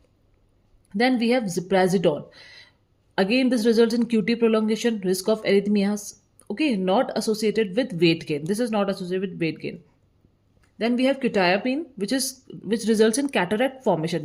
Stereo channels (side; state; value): both; identical; correlation 1.00